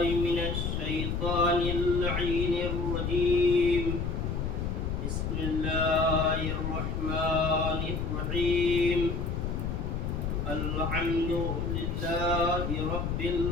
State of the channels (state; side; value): noise; left; rumble, 2 dB below the sound